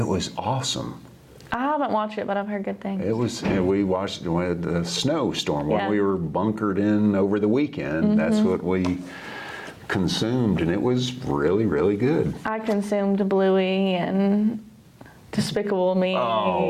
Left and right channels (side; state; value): both; identical; correlation 1.00